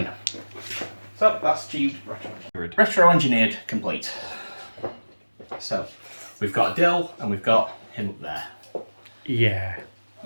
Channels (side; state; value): both; inverted; correlation -1.00